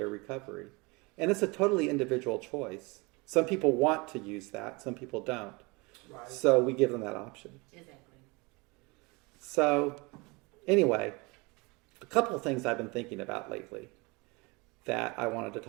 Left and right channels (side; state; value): left; quieter; 26.7 dB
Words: recovery. And it's a totally individual choice. Some people want to use that, some people don't. Right. So we give them that option. Exactly. So anyway, a couple of things I've been thinking about lately that I wanted to